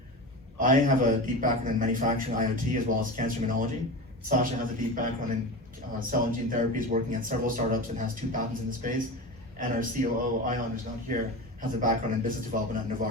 I have a deep background in manufacturing IoT as well as cancer immunology. Sasha has a deep background in cell and gene therapies, working at several startups and has 2 patents in the space. And our COO, Ion, who's not here, has a background in business development at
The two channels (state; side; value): normal; both; correlation 0.27